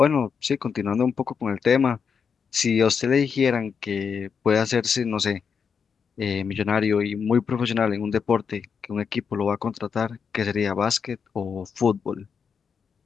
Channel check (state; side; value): quieter; right; 6.3 dB